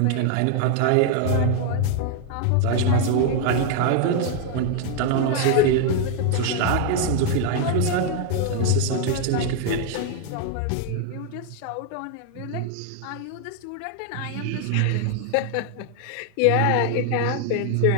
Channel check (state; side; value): different; both; correlation 0.00